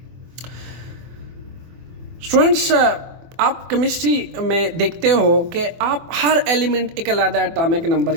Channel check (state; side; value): late; left; 24 ms